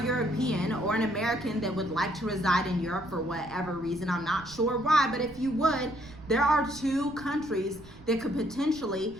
European or an American that would like to reside in Europe for whatever reason, I'm not sure why, but if you would, there are 2 countries that could potentially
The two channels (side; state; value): right; noise; rumble, 19 dB below the sound